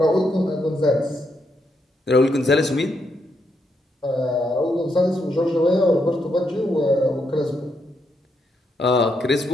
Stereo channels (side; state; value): both; normal; correlation 0.79